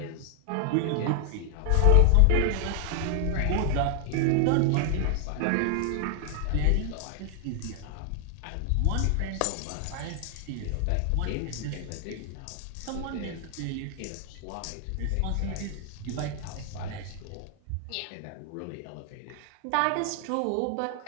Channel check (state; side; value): different; both; correlation 0.00